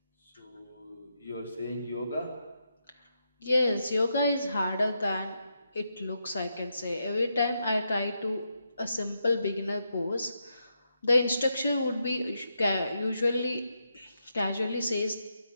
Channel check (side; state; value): both; inverted; correlation -0.83